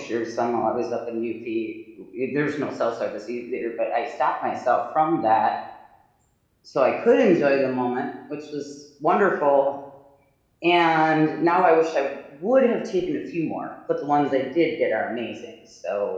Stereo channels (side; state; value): both; identical; correlation 1.00